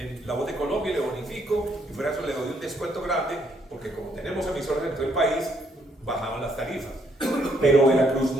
La Voz de Colombia, y le bonifico, y fuera eso le doy un descuento grande, porque como tenemos emisoras en todo el país, bajaban las tarifas. Pero Veracruz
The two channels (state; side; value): normal; both; correlation 0.71